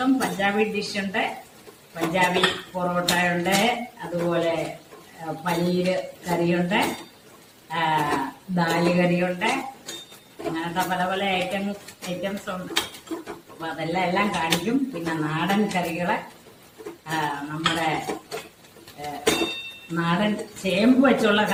പഞ്ചാബി ഡിഷുണ്ട്, പഞ്ചാബി പൊറോട്ട ഉണ്ട്, അതുപോലെ പനീര് കറിയുണ്ട്, ദാല് കറിയുണ്ട്, അങ്ങനത്തെ പല പല ഐറ്റംസ് ഉണ്ട്. അപ്പൊ അതെല്ലാം കാണിക്കും. പിന്നെ നാടൻ കറികള്, നമ്മുടെ നാടൻ ചേമ്പ് വെച്ചുള്ള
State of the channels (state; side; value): identical; both; correlation 1.00